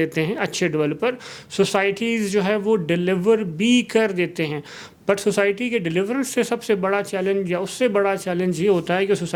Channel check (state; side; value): identical; both; correlation 1.00